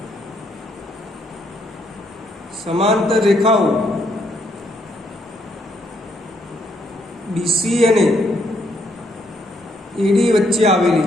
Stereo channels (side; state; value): both; normal; correlation 0.72